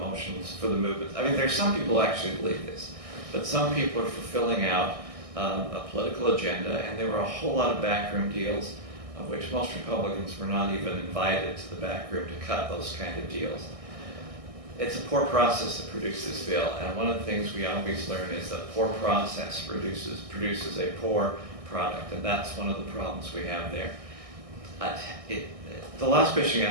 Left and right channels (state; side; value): late; left; 1.6 ms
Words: for the movement. I mean, there's some people who actually believe this, but some people are fulfilling out a political agenda, and there were a whole lot of backroom deals, of which most Republicans were not even invited to the back room to cut those kind of deals. It's a poor process that produced this bill, and one of the things we always learn is that poor process produces a poor product, and that's one of the problems we have there. The last question you